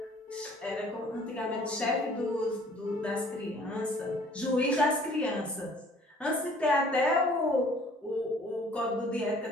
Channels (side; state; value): both; normal; correlation 0.55